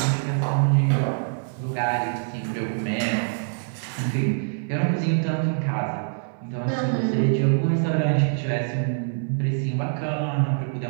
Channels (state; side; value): silent; left; digital silence